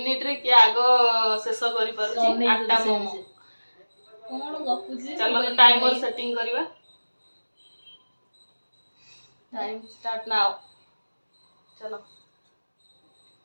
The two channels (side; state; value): both; inverted; correlation -1.00